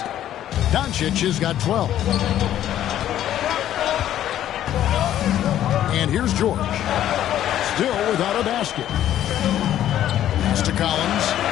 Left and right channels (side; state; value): right; quieter; 11.8 dB